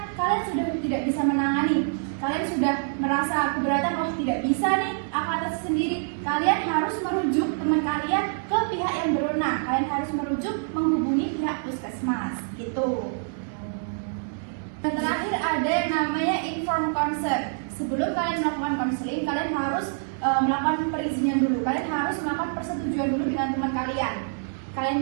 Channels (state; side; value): silent; left; digital silence